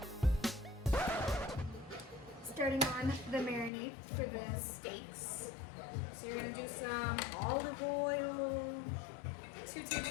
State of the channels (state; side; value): drops out; right; at 3.7 s